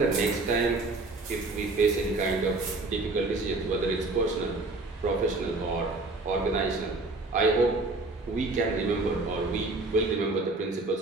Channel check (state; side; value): quieter; left; 3.2 dB